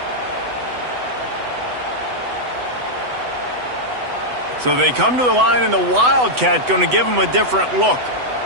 So they come to the line, and the Wildcat going to give them a different look.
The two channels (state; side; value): late; left; 8.0 ms